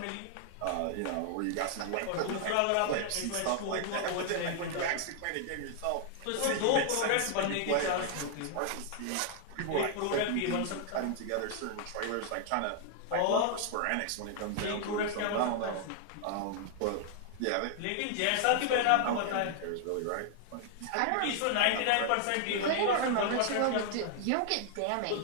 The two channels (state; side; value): different; both; correlation 0.00